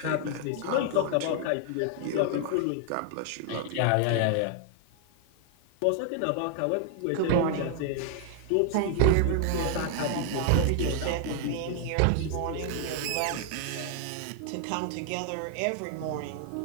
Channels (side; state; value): both; different; correlation 0.00